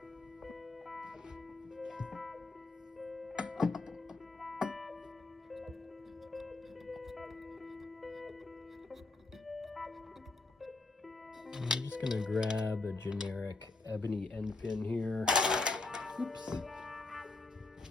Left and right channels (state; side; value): quieter; right; 3.3 dB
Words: I'm just gonna grab a generic ebony end pin here. Oops.